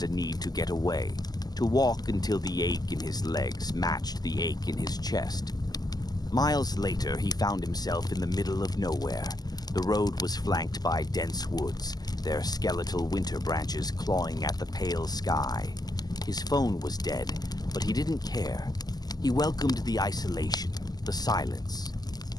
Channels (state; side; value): late; right; 0.19 ms